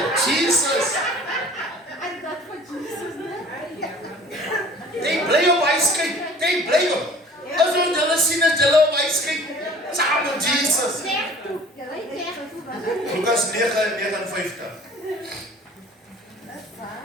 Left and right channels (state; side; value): normal; both; correlation 0.48